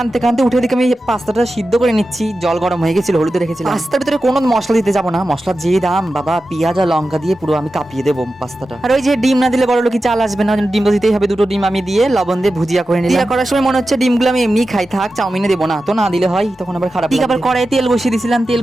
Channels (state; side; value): normal; both; correlation 0.93